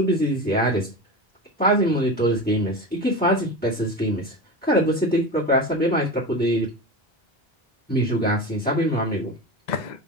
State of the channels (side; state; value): both; normal; correlation 0.25